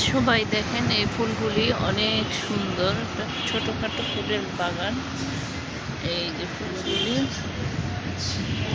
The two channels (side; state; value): both; identical; correlation 1.00